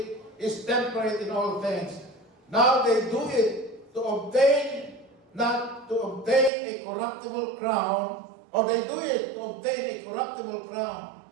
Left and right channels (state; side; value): drops out; left; at 6.5 s